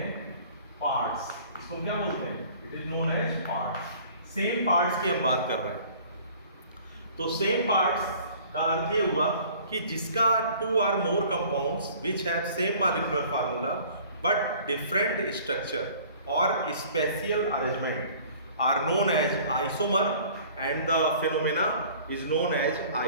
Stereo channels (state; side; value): inverted; both; correlation -0.50